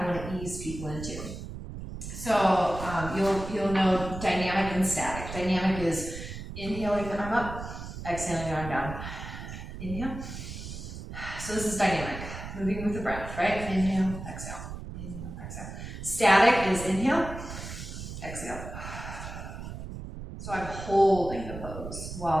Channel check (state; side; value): noise; right; rumble, 9 dB below the sound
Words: want to ease people into. So you'll know dynamic and static. Dynamic is inhaling the arm up, exhaling the arm down. Inhale. So this is dynamic, moving with the breath, right? Inhale, exhale. Inhale, exhale. Static is inhale, exhale. So I'm holding the pose